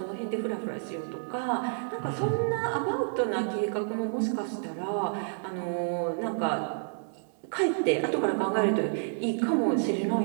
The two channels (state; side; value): silent; left; digital silence